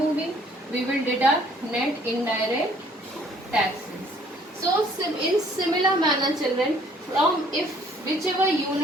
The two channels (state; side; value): normal; both; correlation 0.60